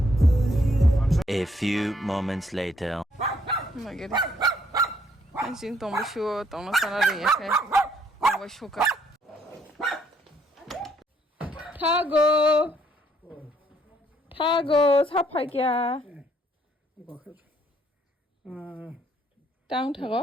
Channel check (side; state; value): both; normal; correlation 0.68